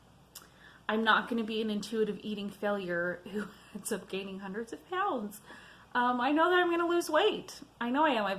I'm not going to be an intuitive eating failure who ends up gaining hundreds of pounds. I know that I'm going to lose weight. I know I am. I've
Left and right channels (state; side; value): identical; both; correlation 1.00